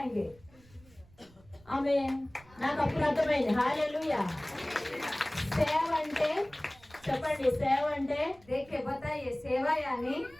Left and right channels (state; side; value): noise; right; rumble, 26 dB below the sound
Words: ఆమె నాకు అప్పుడు అర్థమైంది. హల్లెలూయా. సేవ అంటే చెప్పండి, సేవ అంటే देखिए, बताइए, सेवा यानी